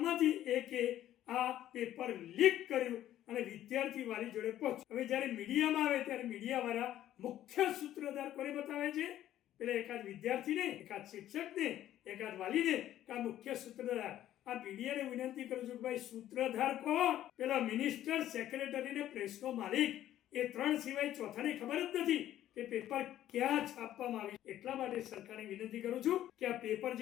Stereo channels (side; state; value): right; quieter; 12.5 dB